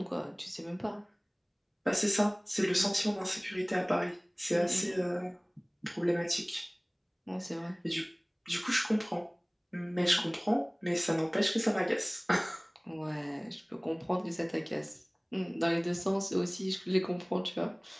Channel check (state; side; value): identical; both; correlation 1.00